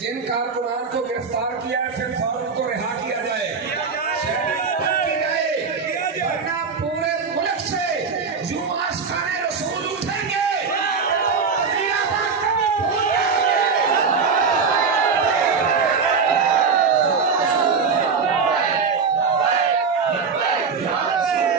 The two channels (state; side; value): quieter; left; 5.4 dB